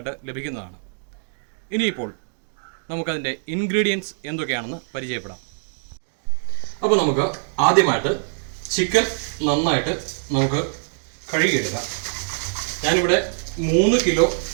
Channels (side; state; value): left; silent; digital silence